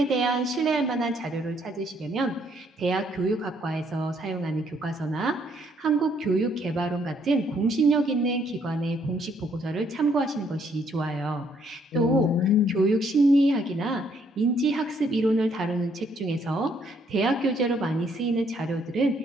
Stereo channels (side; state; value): both; normal; correlation 0.68